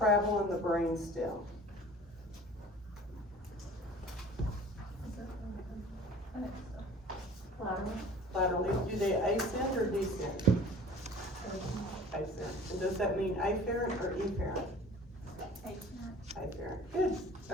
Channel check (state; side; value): normal; both; correlation 0.46